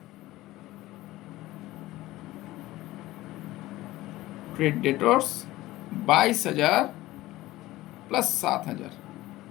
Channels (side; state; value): right; quieter; 17.3 dB